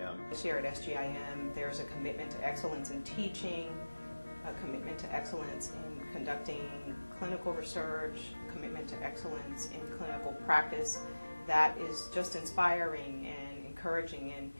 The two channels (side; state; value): both; inverted; correlation -1.00